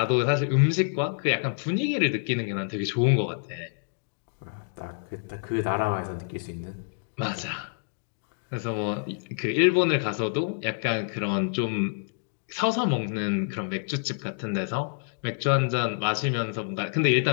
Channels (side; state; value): right; silent; digital silence